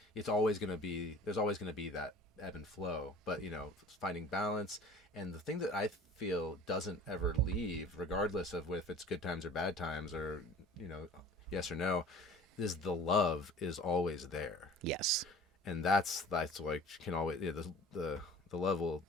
It's always going to be. There's always going to be that ebb and flow, but you know, finding balance. And the thing that I feel doesn't ever leave, regardless of if it's good times or bad times, or you know, yes or no, is the love is always there. Yes. And that's like can always, yeah, the love will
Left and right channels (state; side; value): normal; both; correlation 0.45